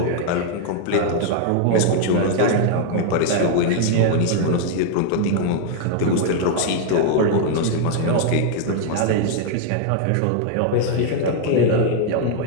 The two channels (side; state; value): both; different; correlation 0.00